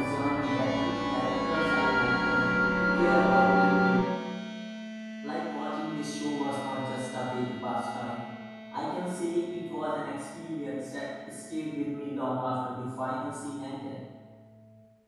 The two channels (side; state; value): both; identical; correlation 1.00